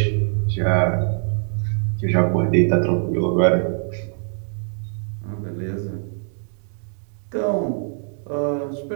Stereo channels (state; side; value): silent; left; digital silence